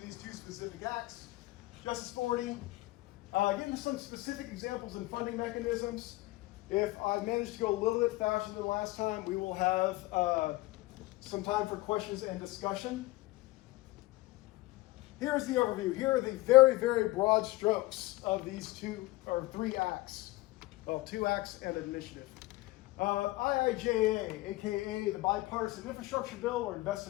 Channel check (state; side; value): quieter; right; 19.5 dB